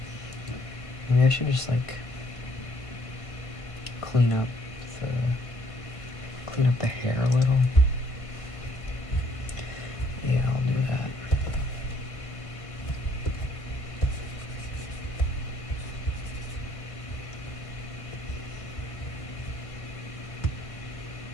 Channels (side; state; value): right; late; 1.5 ms